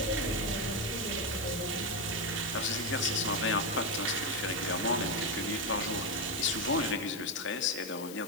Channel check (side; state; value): left; noise; hiss, 13 dB below the sound